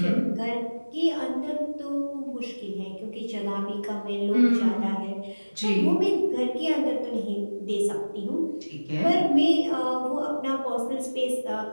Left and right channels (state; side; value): inverted; both; correlation -1.00